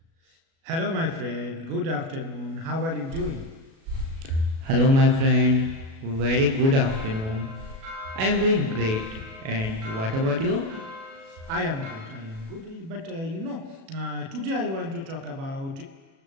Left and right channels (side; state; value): left; late; 37 ms